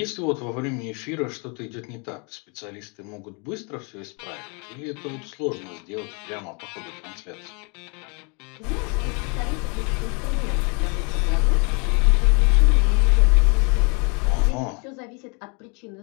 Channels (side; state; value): right; quieter; 33.7 dB